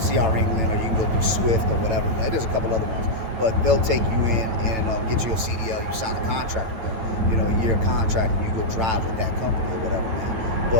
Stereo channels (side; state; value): left; late; 9.1 ms